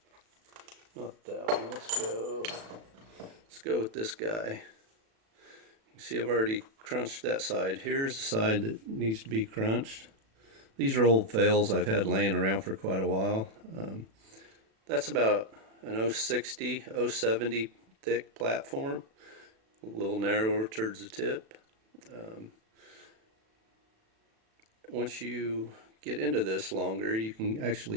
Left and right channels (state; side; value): late; left; 36 ms